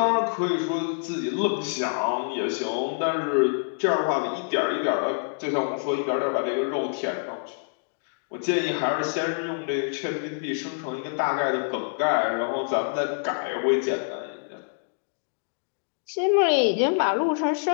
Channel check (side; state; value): right; silent; digital silence